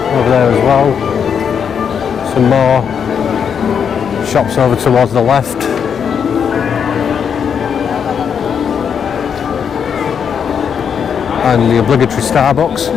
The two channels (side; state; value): right; quieter; 7.3 dB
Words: there as well. Some more shops over towards the left. And the obligatory Starbucks